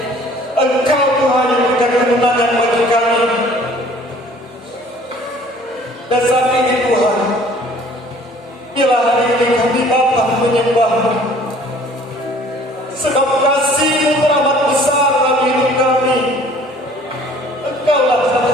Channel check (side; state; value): both; normal; correlation 0.53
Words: Engkau Tuhan yang memberikan kemenangan bagi kami. Dan saat ini Tuhan, bila hari ini kami datang menyembah-Mu, sebab kasih-Mu teramat besar dalam hidup kami. Engkaulah